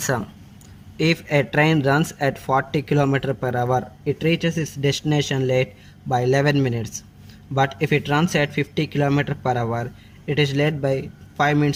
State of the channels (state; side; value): identical; both; correlation 1.00